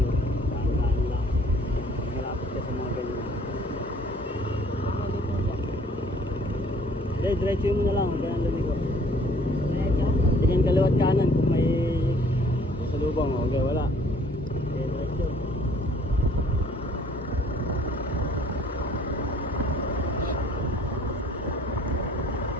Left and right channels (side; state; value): both; normal; correlation 0.57